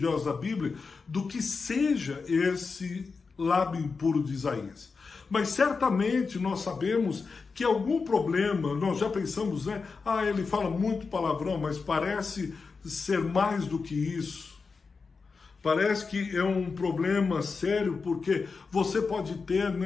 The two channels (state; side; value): quieter; right; 4.7 dB